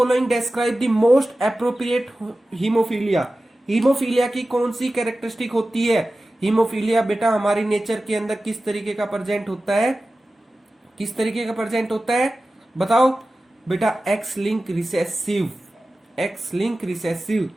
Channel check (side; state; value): both; normal; correlation 0.95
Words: describe the most appropriate haemophilia. Haemophilia की कौन सी कैरेक्टरिस्टिक होती है? हीमोफीलिया बेटा हमारी नेचर के अंदर किस तरीके का प्रेजेंट होता है? किस तरीके का प्रेजेंट होता है? बताओ बेटा. X link recessive.